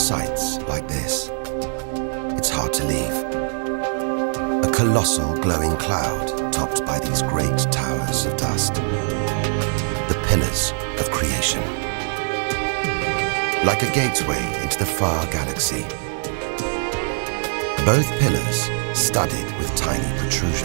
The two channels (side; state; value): left; silent; 64 dB below the other